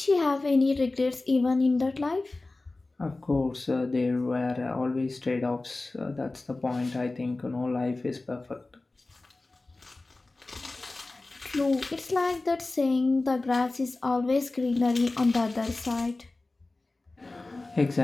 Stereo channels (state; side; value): quieter; right; 3.2 dB